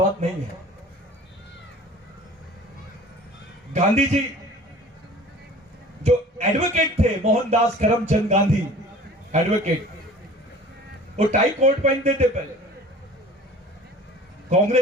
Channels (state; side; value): normal; both; correlation 0.44